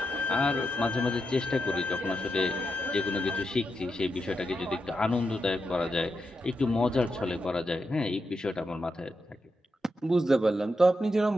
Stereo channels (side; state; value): both; normal; correlation 0.85